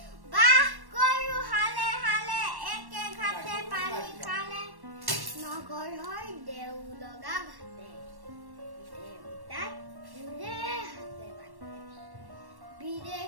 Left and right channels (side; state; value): left; late; 1.1 ms